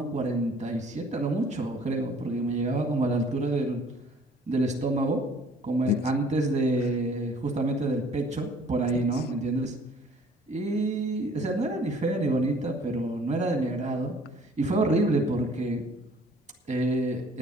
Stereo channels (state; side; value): normal; both; correlation 0.55